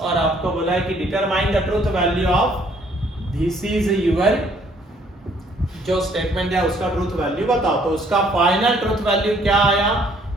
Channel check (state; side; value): normal; both; correlation 0.63